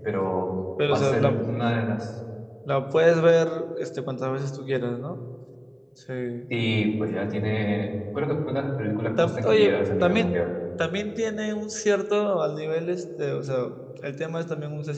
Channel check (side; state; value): both; identical; correlation 1.00